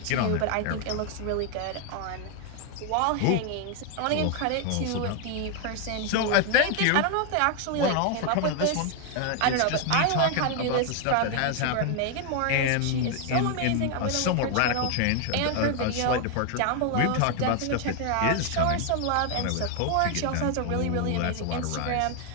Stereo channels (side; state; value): both; different; correlation 0.01